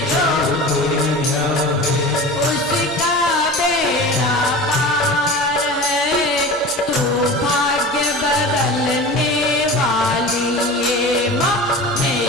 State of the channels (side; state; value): right; noise; hum, 25 dB below the sound